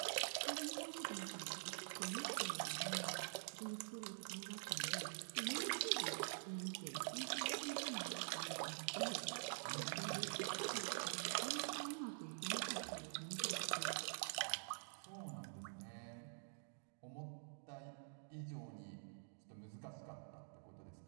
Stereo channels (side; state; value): left; silent; digital silence